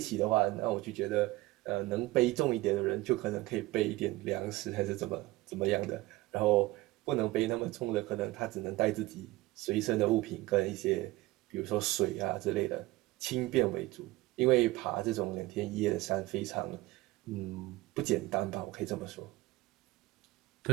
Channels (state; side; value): quieter; left; 19.2 dB